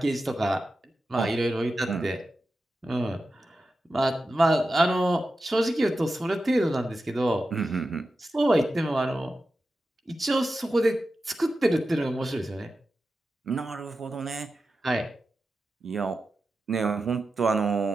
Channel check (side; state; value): both; normal; correlation 0.92